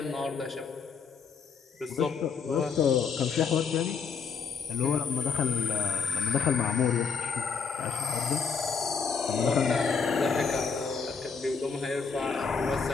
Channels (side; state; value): right; quieter; 5.7 dB